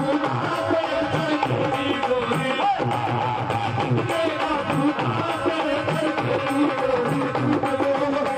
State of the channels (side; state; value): both; identical; correlation 1.00